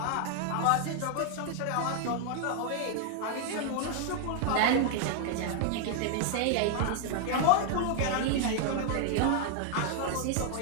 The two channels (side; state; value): both; different; correlation 0.00